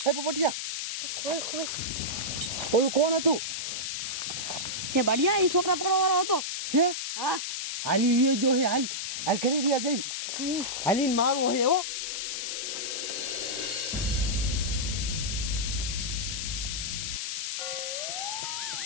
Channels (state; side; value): noise; left; hiss, 3 dB below the sound